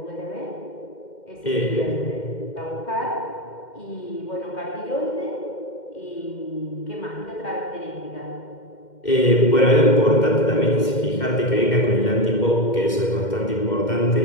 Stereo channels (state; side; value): late; right; 2.1 ms